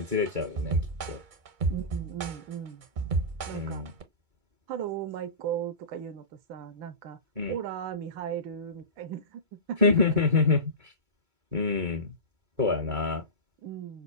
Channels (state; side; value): late; left; 2.2 ms